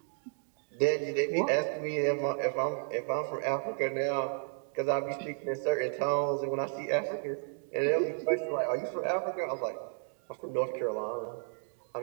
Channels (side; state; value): left; silent; 56 dB below the other